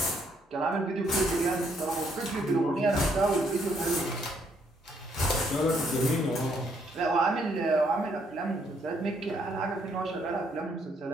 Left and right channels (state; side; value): normal; both; correlation 0.71